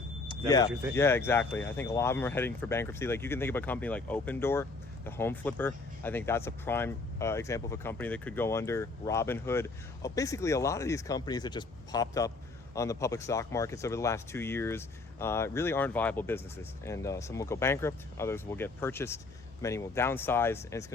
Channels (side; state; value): right; quieter; 3.5 dB